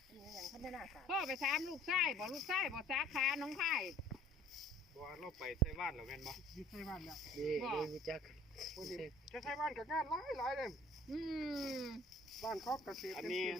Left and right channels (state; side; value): normal; both; correlation 0.53